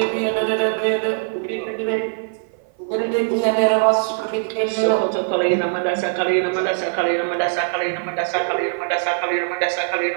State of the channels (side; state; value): left; silent; 55 dB below the other